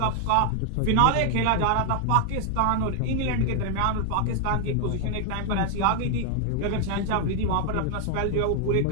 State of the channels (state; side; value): different; both; correlation 0.00